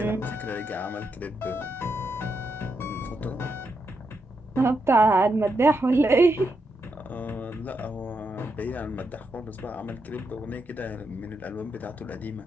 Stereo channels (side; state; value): both; normal; correlation 0.83